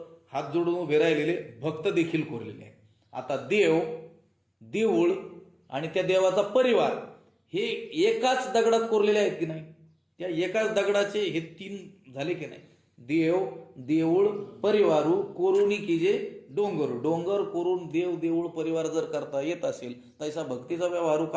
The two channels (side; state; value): both; identical; correlation 1.00